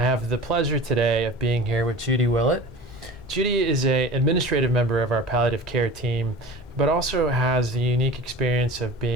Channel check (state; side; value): normal; both; correlation 0.38